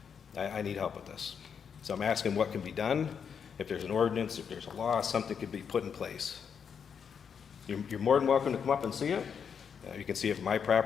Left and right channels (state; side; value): quieter; right; 7.0 dB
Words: I need help with this. So I'm asking what can be done. If there's an ordinance, if there's a law, something could be put in place. You're more than welcome to come up and see it. You can see it from my